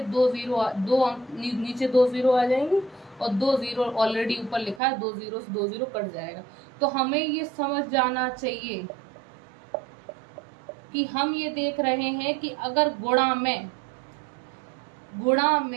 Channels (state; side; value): drops out; left; at 4.8 s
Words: 2 जीरो आ जाएंगे, और 2 जीरो ऑलरेडी ऊपर लिखा है, 2 जीरो से 2 जीरो कट जाएगा। तो हमें ये समझ जाना चाहिए कि हम ये देख रहे हैं कि अगर गुणा में